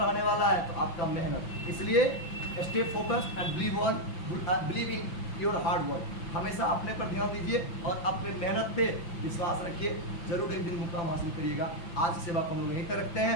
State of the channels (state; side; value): late; right; 5.8 ms